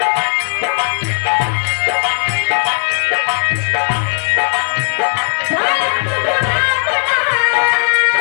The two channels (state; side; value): silent; right; digital silence